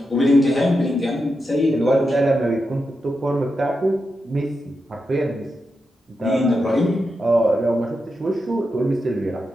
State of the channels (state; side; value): normal; both; correlation 0.88